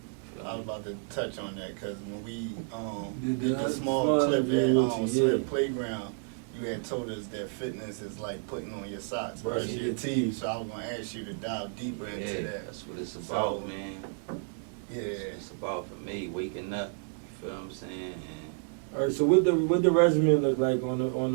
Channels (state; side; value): silent; left; 57 dB below the other